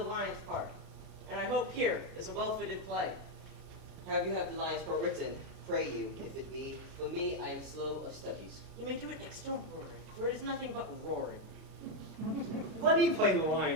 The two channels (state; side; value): late; left; 33 ms